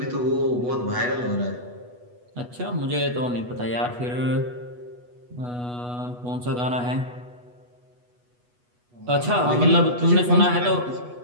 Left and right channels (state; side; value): late; left; 8.2 ms